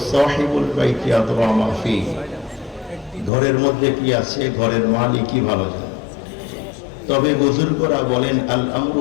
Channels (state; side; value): drops out; right; at 3.3 s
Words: সাহিবুল বাইতি আদরা মা ফি, ঘরের মধ্যে কি আছে ঘরের মালিকই ভালো জানে। তবে বুজুর্গরা বলেন আল আমরু